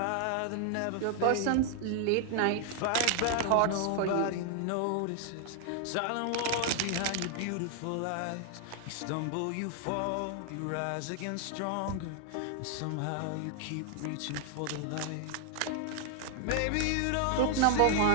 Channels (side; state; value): both; different; correlation 0.00